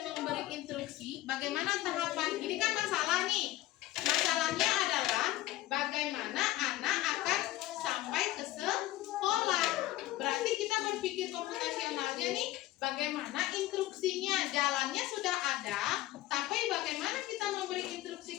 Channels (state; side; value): quieter; right; 16.0 dB